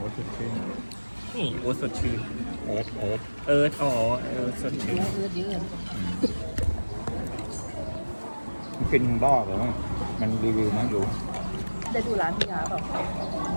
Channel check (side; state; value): both; inverted; correlation -1.00